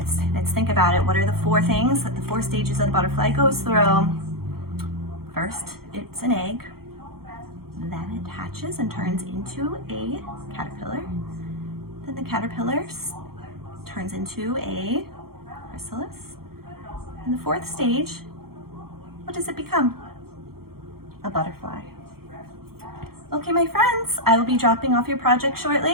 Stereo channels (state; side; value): late; left; 0.94 ms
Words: think about it. What are the 4 things that the 4 stages that the butterfly goes through? First, it's an egg. Then it hatches and turns into a caterpillar. Then the caterpillar turns into a chrysalis. And the 4th stage, what does it become? A butterfly. Okay, my friends, I will be dropping off your project